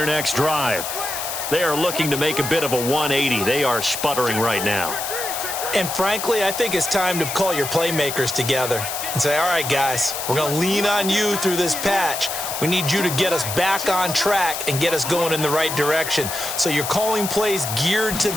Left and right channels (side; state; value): left; noise; hiss, 5 dB below the sound